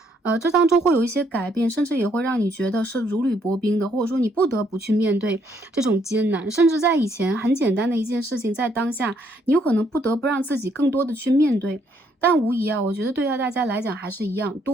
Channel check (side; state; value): both; normal; correlation 0.70